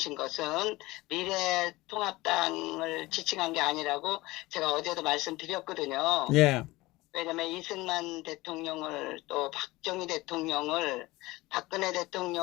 것은 미래통합당을 지칭한 게 아니라고 제가 어제도 말씀드렸거든요. 예, 왜냐면 이승만 대통령을 또 박정희 대통령을 박근혜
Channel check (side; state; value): right; quieter; 20.3 dB